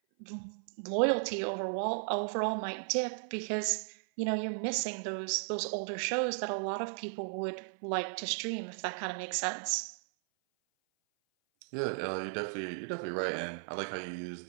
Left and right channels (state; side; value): silent; left; 54 dB below the other